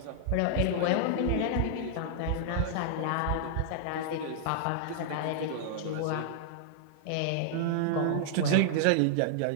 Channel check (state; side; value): different; both; correlation -0.01